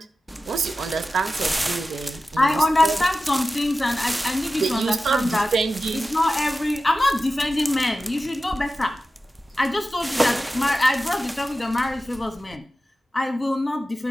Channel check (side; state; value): both; normal; correlation 0.94